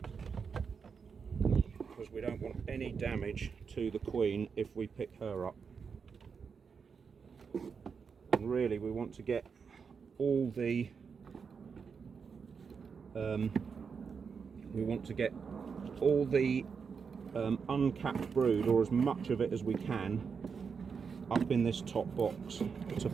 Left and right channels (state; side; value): quieter; left; 5.9 dB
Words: because we don't want any damage to the queen if we pick her up. And really we want to get all the uncapped brood, or as much of it as we can, up in this top box to